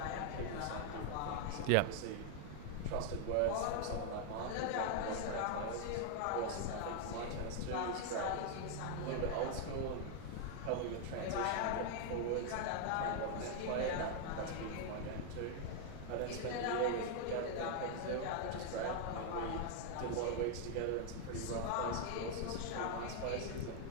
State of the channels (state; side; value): different; both; correlation 0.00